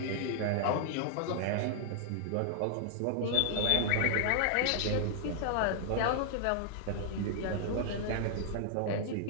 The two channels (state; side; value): different; both; correlation -0.01